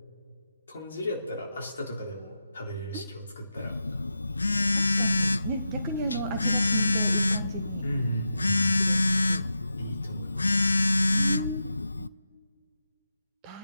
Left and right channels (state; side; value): inverted; both; correlation -0.89